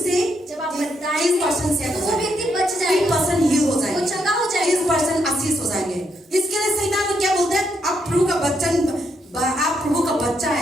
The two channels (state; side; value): normal; both; correlation 0.77